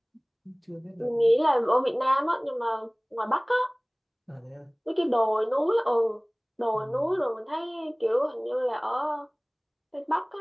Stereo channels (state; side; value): identical; both; correlation 1.00